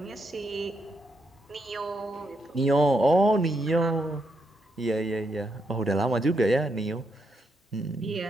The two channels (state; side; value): normal; both; correlation 0.80